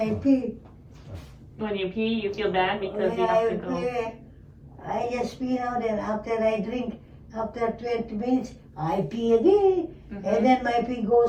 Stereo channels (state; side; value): identical; both; correlation 1.00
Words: pee. When you pee, you feel bad because When you I have to go. pee, I just pee now, then after I drink, after 20 minutes, I pee again. Mhm. And then my pee